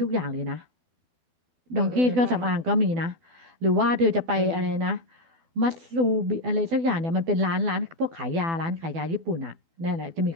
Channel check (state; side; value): late; left; 12 ms